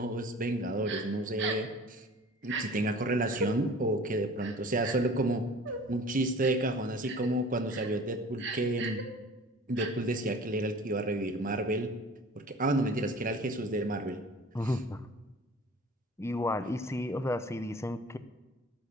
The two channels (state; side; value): normal; both; correlation 0.44